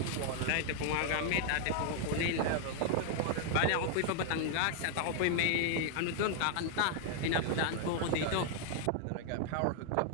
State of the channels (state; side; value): different; both; correlation 0.00